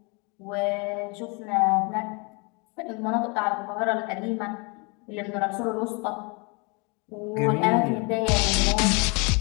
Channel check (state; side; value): quieter; right; 31.2 dB